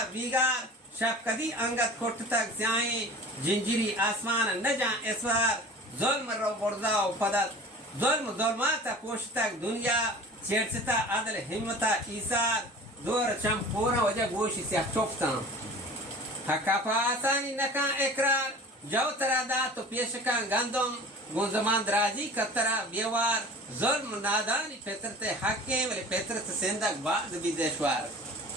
بیگار شب کدی انگت کٹ تک سیائیں جنجری آسمان نجان اسوار ظلم رو بردا و پدت ظلم ظلماتا پوش تک دنیا چیرستا عدل حمتا ایسار دور چم پورا وجہ گوشی سے چوپتا حقا پا آسانی نکان اقرار جو ترا دا تو پیشکان گندم گنزمان درازی کترا بیوار ظلم نادانی فطرت حقیں ولی فطرت سندک بعد بھی دشوار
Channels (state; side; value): normal; both; correlation 0.41